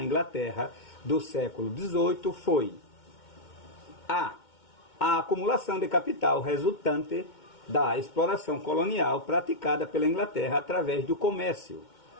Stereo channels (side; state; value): right; late; 2.2 ms